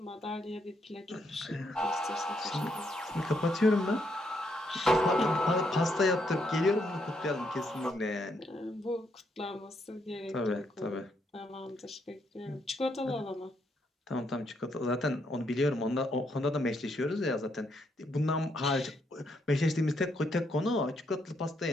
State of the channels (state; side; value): normal; both; correlation 0.76